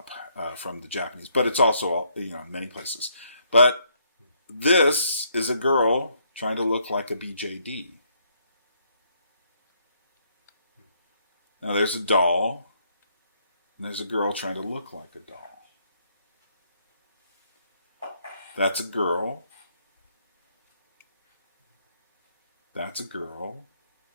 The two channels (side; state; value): both; inverted; correlation -0.71